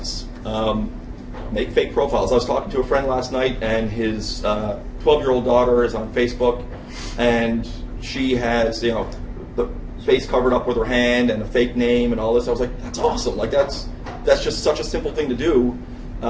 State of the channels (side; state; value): both; identical; correlation 1.00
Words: Make fake profiles. I was talking to a friend last night, and his 12-year-old daughter is on Facebook, and she has, the face covered up with her hand and a fake name and all this. I was like, that's awesome. Like that's just such a simple thing to do.